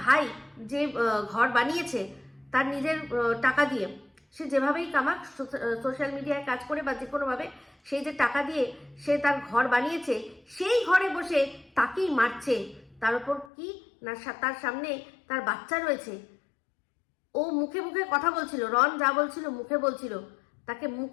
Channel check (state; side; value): drops out; right; at 13.5 s